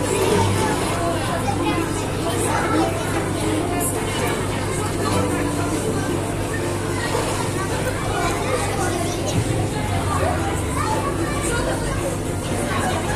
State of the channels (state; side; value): identical; both; correlation 1.00